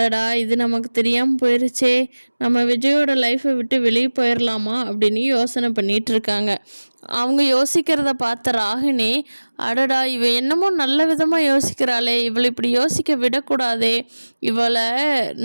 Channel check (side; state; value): both; inverted; correlation -1.00